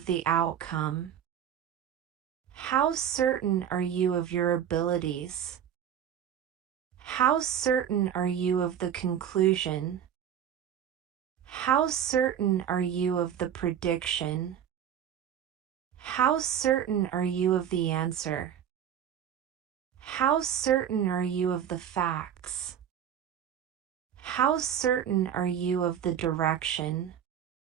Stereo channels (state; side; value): quieter; left; 9.4 dB